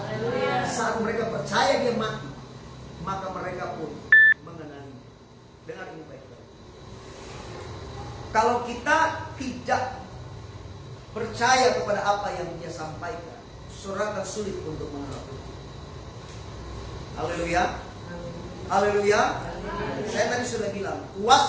Saat mereka percaya dia mati, maka mereka pun mengenali. Dengar ini baik-baik. Kalau kita tidak percaya kepada apa yang dia sampaikan, saudara akan sulit untuk mengerti. Haleluya. Haleluya. Saya tadi sudah bilang,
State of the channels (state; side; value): identical; both; correlation 1.00